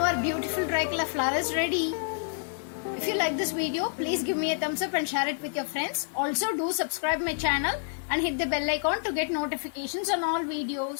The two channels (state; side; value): silent; right; digital silence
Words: Beautiful tricolor flower is ready. If you like this video, please give me a thumbs up and share it with your friends. Also do subscribe my channel and hit the bell icon to get notifications on all